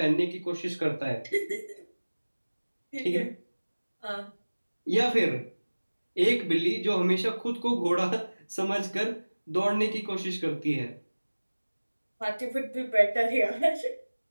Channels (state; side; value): inverted; both; correlation -1.00